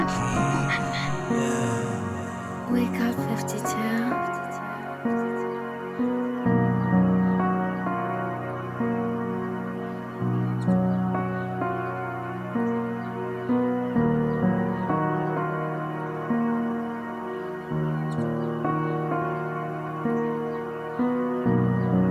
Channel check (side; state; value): both; identical; correlation 1.00